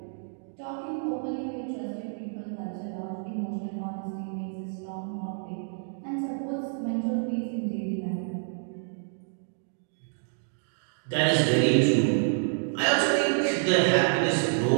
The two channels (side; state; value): left; silent; digital silence